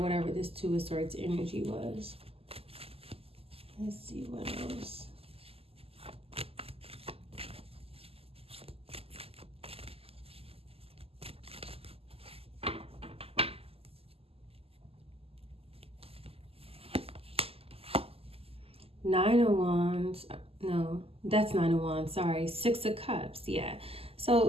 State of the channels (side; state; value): left; late; 0.28 ms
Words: this 2 of Swords energy was. Let's see what else. Nine of Wands. No, that's 9 of Wands. Sorry. 6 of Cups. Yeah.